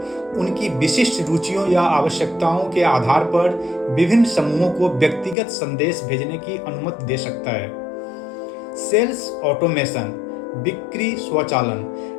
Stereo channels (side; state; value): right; drops out; at 5.4 s